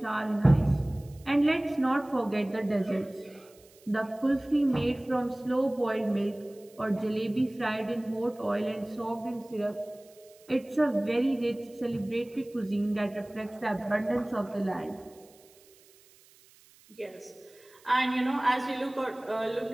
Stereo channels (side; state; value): right; noise; hiss, 27 dB below the sound